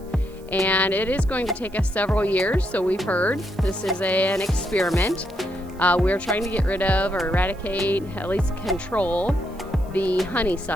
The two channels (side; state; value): right; noise; hiss, 27 dB below the sound